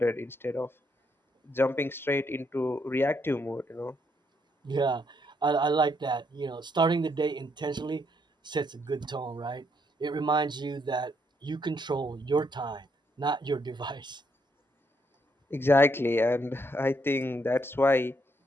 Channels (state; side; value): normal; both; correlation 0.74